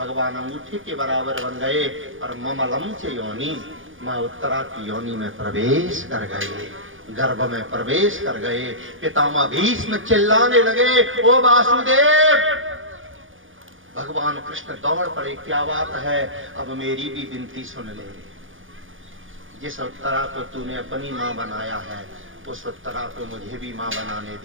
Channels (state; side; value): late; left; 0.58 ms